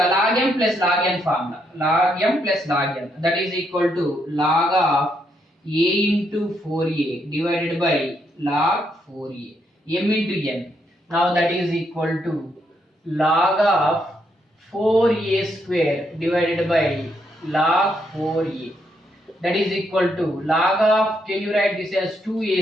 m plus log n formula. Log m plus log n, that is equal to log of a into 4a divided by log 4a. M into n. Now that is equal to log of 4a square divided by log 4a. That is equal to log of, can you write this as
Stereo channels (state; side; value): normal; both; correlation 0.76